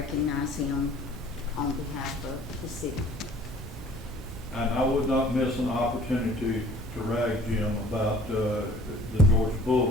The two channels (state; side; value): normal; both; correlation 0.52